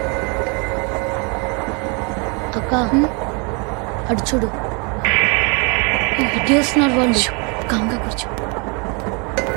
అక్క అడు చూడు ఇటు వస్తున్నారు వాళ్ళు. కాంగా కూర్చో.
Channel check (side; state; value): left; quieter; 33.0 dB